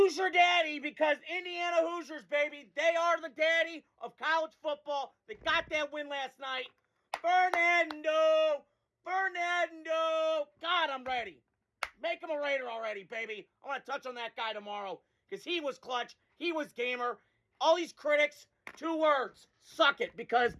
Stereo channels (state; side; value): identical; both; correlation 1.00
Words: Daddy, because Indiana Hoosiers, baby, they are the daddy of college football. They got that win last night. Fernando. God, I'm ready. Make him a Raider already, baby. I want to touch on that guy tomorrow because he was clutch. He was gamer. All these critics, 2 words, suck it, because